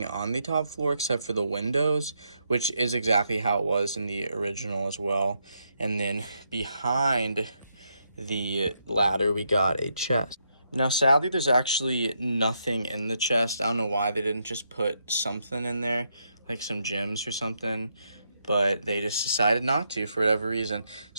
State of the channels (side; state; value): both; inverted; correlation -0.79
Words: on the top floor except for the windows, which is exactly how it was in the original as well. And then behind the ladder, we got a chest. Now, sadly, there's actually nothing in the chest. I don't know why they didn't just put something in there, like some gems or something, but they just decided not to for whatever reason.